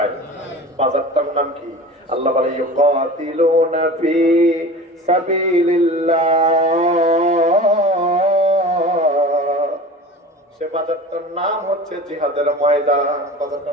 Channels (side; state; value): both; normal; correlation 0.36